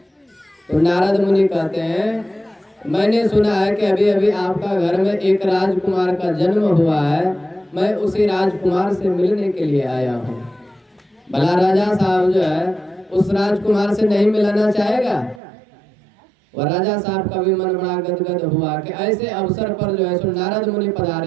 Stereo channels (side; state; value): left; drops out; at 15.4 s